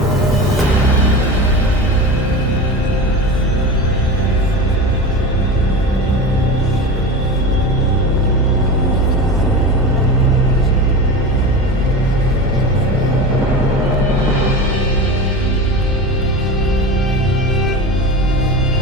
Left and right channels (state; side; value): normal; both; correlation 0.29